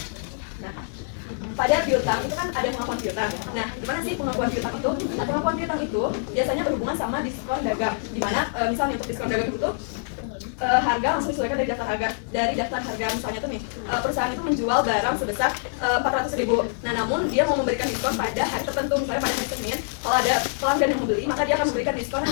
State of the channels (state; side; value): silent; right; 62 dB below the other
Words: Nah, pada piutang itu kan ada pengakuan piutang. Nah, gimana sih pengakuan piutang itu? Nah, pengakuan piutang itu biasanya berhubungan sama diskon dagang. Di mana misalnya untuk diskon dagang itu harga langsung disesuaikan dari daftar harga. Misalnya tuh nih perusahaan itu menjual barang sebesar 400.000. Nah, namun dia mau memberikan diskon pada hari tertentu, misalnya pada hari Senin. Kalau ada pelanggan yang membeli, maka dia akan memberikan diskon